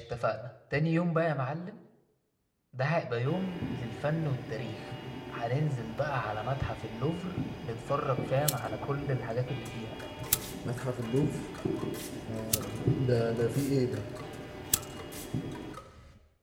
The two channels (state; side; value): identical; both; correlation 1.00